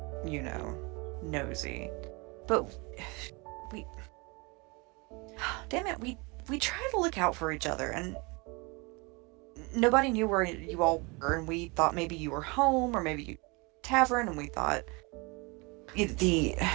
nosy. But damn it, we try to look out for each other, and nobody knew where you all were, and we thought maybe you were home, or maybe you tavern, and we thought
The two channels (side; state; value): left; quieter; 27.8 dB